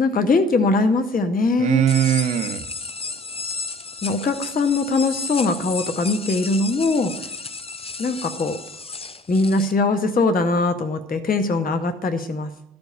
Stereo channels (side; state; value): both; normal; correlation 0.52